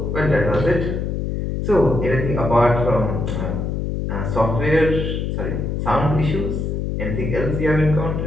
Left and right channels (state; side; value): noise; left; hum, 2 dB below the sound